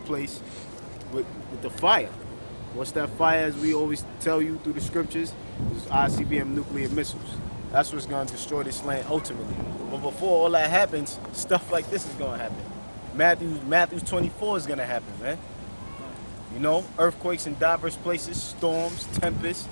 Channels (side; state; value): both; inverted; correlation -1.00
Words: with the fire. What's that fire, as we always tell you through the scriptures, is ICBM nuclear missiles. That's what's gonna destroy this land ultimately. But before all that happens, stuff like this is gonna happen. Matthew 24 is gonna happen, man. You know, earthquakes in diverse places, storms, tempests,